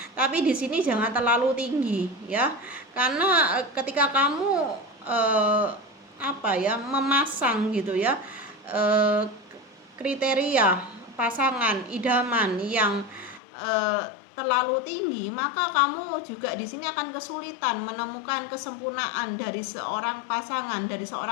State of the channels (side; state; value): right; drops out; at 13.4 s